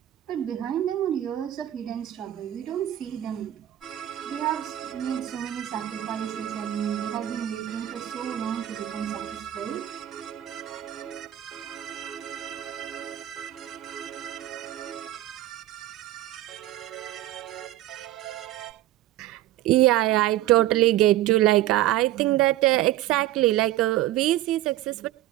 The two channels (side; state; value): left; quieter; 14.0 dB